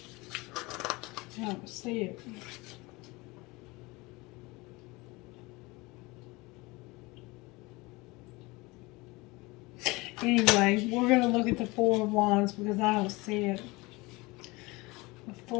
I don't see it. Anyway, we're going to look at the Four of Wands because I don't see it. The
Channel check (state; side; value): quieter; right; 23.4 dB